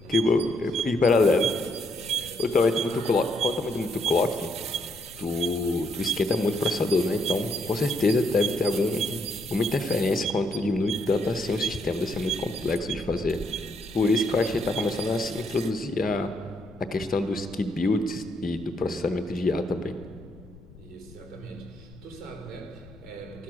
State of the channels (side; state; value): left; noise; rumble, 21 dB below the sound